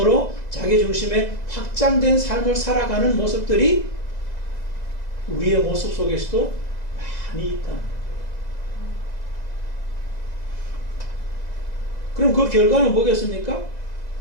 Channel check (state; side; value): late; right; 2.0 ms